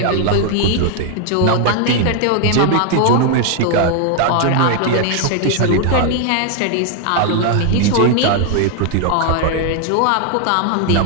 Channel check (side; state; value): both; different; correlation 0.00